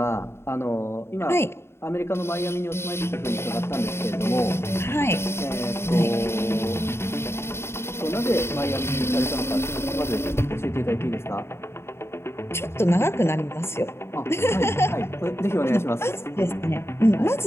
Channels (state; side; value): late; right; 0.12 ms